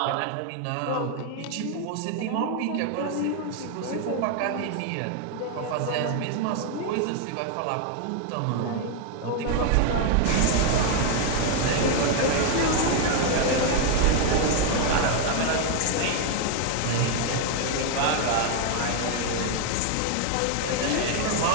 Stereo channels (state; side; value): different; both; correlation 0.01